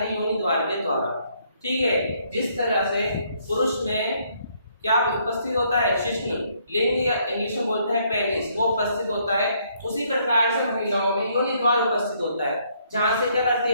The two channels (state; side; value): inverted; both; correlation -0.69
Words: योनि द्वार के द्वारा। ठीक है, जिस तरह से पुरुष में क्या उपस्थित होता है, शिश्न लिंग या इंग्लिश में बोलते हैं पेनिस, वो उपस्थित होता है, उसी प्रकार से महिलाओं में योनि द्वार उपस्थित होता है, जहां से क्या करती